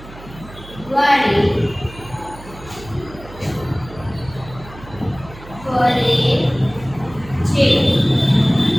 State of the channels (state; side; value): noise; right; hum, 18 dB below the sound